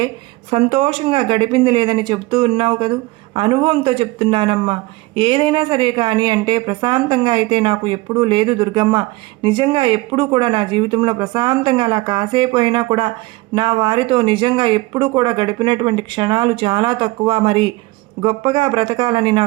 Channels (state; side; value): quieter; left; 21.0 dB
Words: సంతోషంగా గడిపింది లేదని చెబుతూ ఉన్నావు కదూ. అనుభవంతో చెప్తున్నానమ్మా. ఏదైనా సరే కానీ అంటే ప్రశాంతంగా అయితే నాకు ఎప్పుడూ లేదు దుర్గమ్మ. నిజంగా ఎప్పుడూ కూడా నా జీవితంలో ప్రశాంతంగా అలా కాసేపు అయినా కూడా నా వారితో నిజంగా ఎప్పుడూ కూడా గడిపినటువంటి క్షణాలు చాలా తక్కువ. మరి గొప్పగా బ్రతకాలని